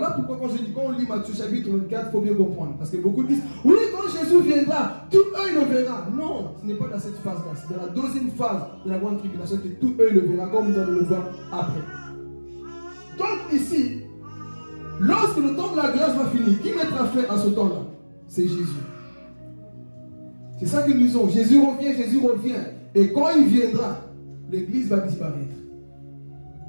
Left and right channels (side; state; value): both; inverted; correlation -1.00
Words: pourquoi quand on lit Matthieu chapitre 24, il faut bien comprendre. Parce que beaucoup disent, oui, quand Jésus viendra, tout œil le verra. Non, ce n'est pas dans cette phase-là. C'est dans la deuxième phase de la grande tribulation que tout œil le verra, comme nous allons le voir après. Donc ici, lorsque le temps de la grâce va finir, qui mettra fin à ce temps-là? C'est Jésus. C'est ça que nous disons. Jésus revient. Et quand il viendra, l'église va disparaître.